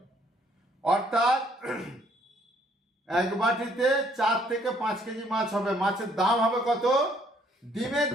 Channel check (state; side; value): normal; both; correlation 0.65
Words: অর্থাৎ 1 বাটিতে 4 থেকে 5 কেজি মাছ হবে। মাছের দাম হবে কত? ডিমের